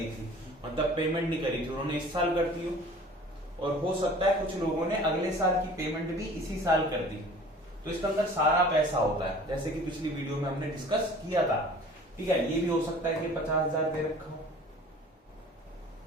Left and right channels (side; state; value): both; normal; correlation 0.46